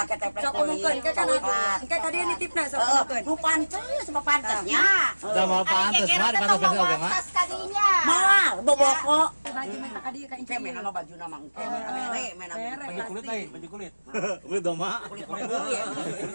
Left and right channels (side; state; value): both; inverted; correlation -1.00